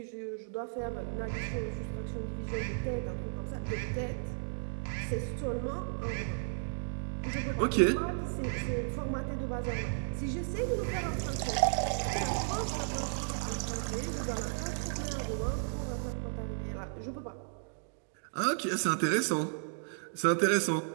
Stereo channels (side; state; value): left; silent; digital silence